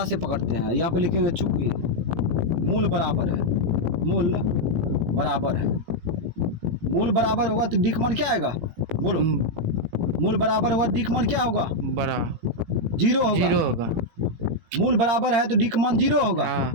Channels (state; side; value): late; left; 18 ms